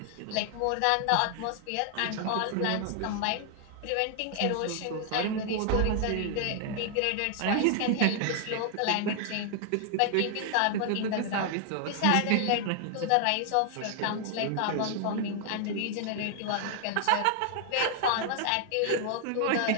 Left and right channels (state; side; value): different; both; correlation 0.00